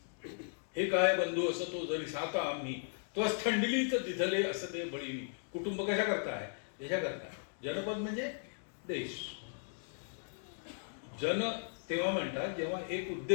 हे काय बंधू असं तो जरी साता आम्ही तो थंडिलीच दिधले असं ते बळीनी। कुटुंब कशा करता आहे? देशाकरता। जनपद म्हणजे देश। जन तेव्हा म्हणतात जेव्हा एक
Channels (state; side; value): silent; right; digital silence